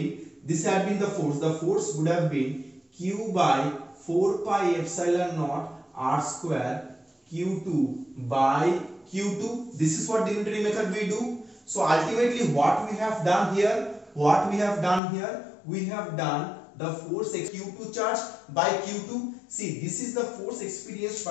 this had been the force would have been Q by 4 pi epsilon naught r square Q2 by Q2. This is what the unitary method we do. So ultimately what we have done here, we have done the force Q2 charge by Q2. See, this is the force experienced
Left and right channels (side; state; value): right; drops out; at 15.0 s